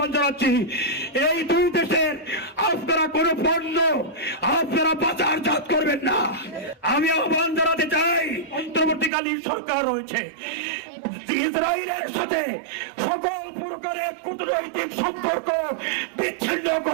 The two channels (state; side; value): drops out; left; at 9.1 s